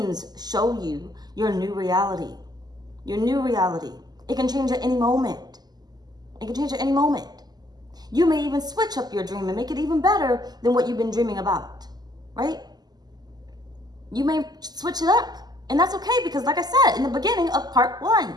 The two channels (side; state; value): left; late; 0.20 ms